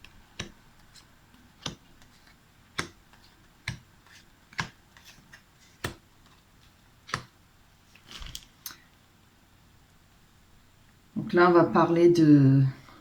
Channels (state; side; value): identical; both; correlation 1.00